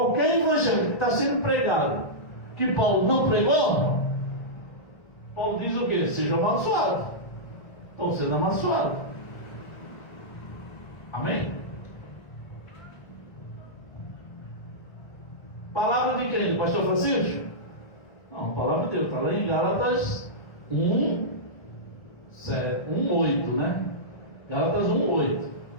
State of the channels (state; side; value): late; right; 1.5 ms